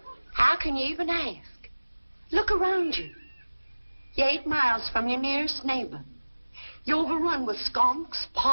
how can you even ask? Look around you. You're 8 miles from your nearest neighbor. You're overrun with skunks,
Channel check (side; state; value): both; inverted; correlation -1.00